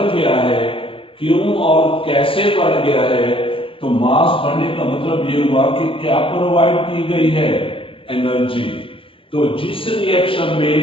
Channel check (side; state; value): right; late; 0.26 ms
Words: गया है, क्यों और कैसे बढ़ गया है, तो मास बढ़ने का मतलब ये हुआ कि क्या प्रोवाइड की गई है? एनर्जी। तो जिस रिएक्शन